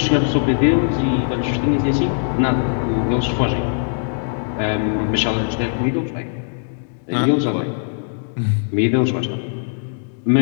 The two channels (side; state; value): right; silent; digital silence